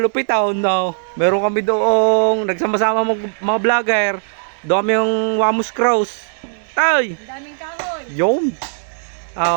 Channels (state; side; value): silent; left; 67 dB below the other